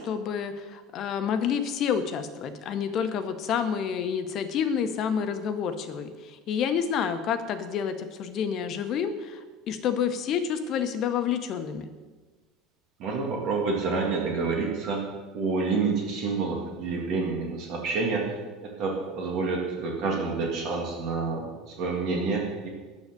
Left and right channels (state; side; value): normal; both; correlation 0.33